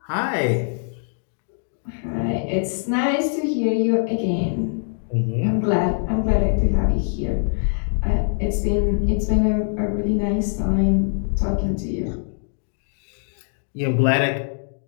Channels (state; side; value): silent; right; digital silence